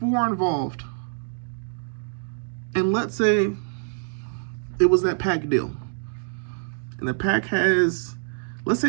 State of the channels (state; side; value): silent; left; digital silence